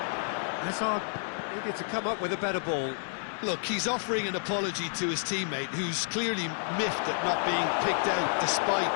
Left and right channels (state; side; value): silent; right; digital silence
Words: Hazard needed to come up with a better ball. Look, he's offering an apology to his teammate, who's clearly miffed at not being picked out despite